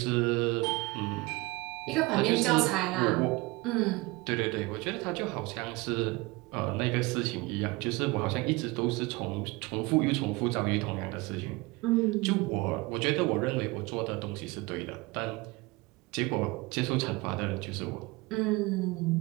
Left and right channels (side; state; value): left; quieter; 23.4 dB